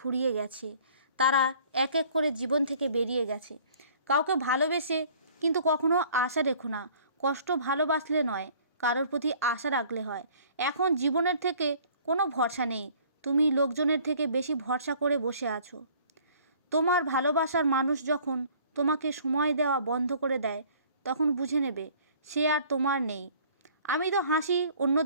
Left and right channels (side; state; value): both; inverted; correlation -0.54